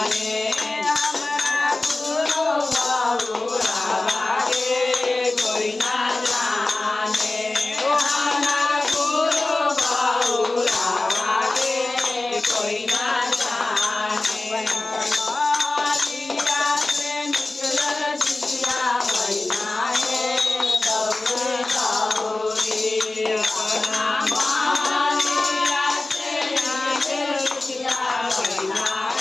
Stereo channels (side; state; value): right; quieter; 3.0 dB